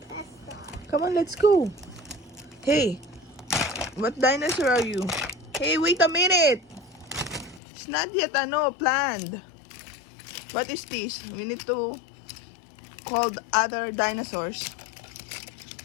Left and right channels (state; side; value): drops out; right; at 7.6 s